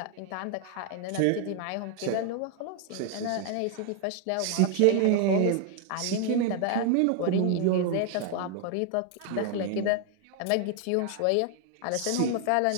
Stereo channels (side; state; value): both; different; correlation 0.00